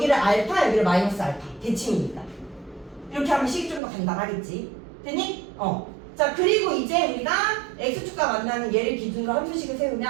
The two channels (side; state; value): left; drops out; at 3.8 s